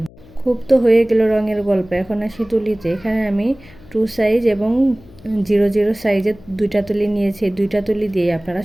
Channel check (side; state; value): left; noise; hum, 23 dB below the sound